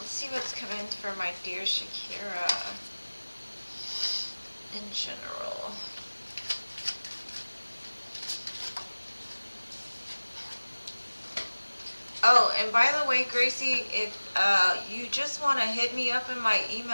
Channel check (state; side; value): inverted; both; correlation -1.00